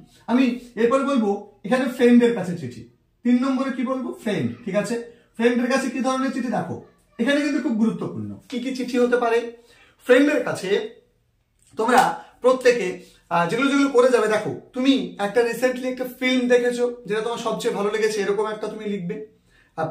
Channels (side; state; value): both; identical; correlation 1.00